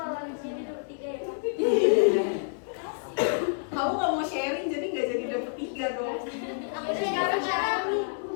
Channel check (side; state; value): right; silent; digital silence